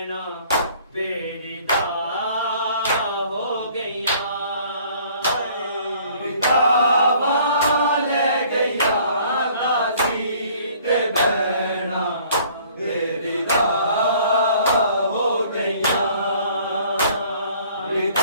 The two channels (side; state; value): both; inverted; correlation -0.56